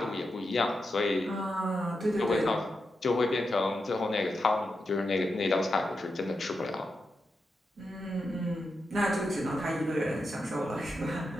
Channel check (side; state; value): both; normal; correlation 0.87